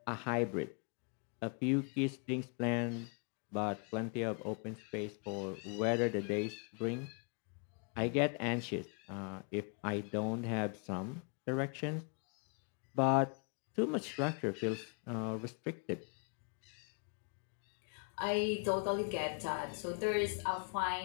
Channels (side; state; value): right; quieter; 38.5 dB